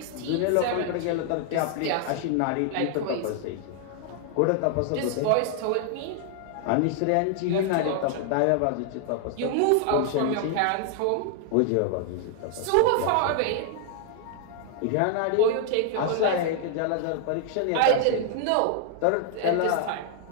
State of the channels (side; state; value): both; different; correlation 0.00